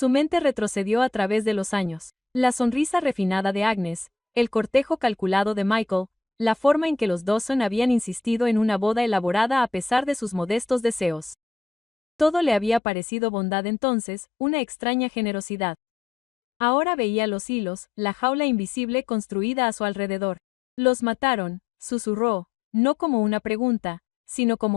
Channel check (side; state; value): right; drops out; at 12.8 s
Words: mente retrocedió a través de los años. La sonrisa refinada de Agnes, el cortejo calculado de Michael, la forma en que los Dawson habían insistido en una boda elaborada a pesar de sus modestos deseos. Todo le había parecido bondad entonces, una extraña generosidad. Ahora veía los hilos, la jaula invisible construida a su alrededor. Los mataron, susurró, no como una pregunta, sino